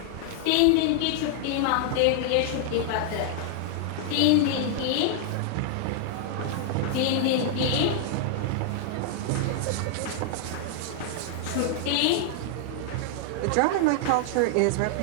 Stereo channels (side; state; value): both; different; correlation 0.00